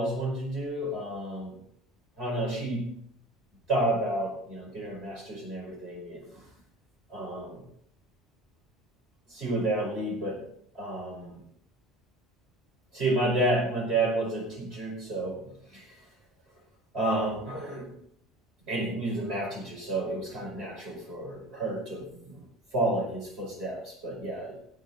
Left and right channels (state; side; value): normal; both; correlation 0.39